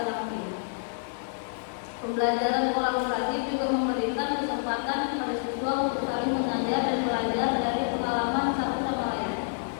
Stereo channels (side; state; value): right; silent; 59 dB below the other